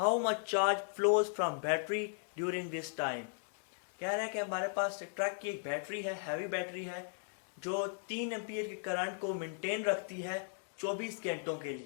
much charge flows from battery during this time. कह रहा है कि हमारे पास ट्रक की एक बैटरी है, हैवी बैटरी है, जो 3 एम्पियर के करंट को मेंटेन रखती है 24 घंटों के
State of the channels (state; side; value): silent; right; digital silence